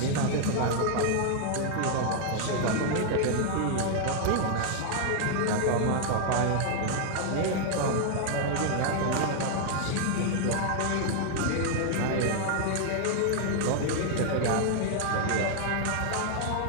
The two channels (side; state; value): both; different; correlation 0.00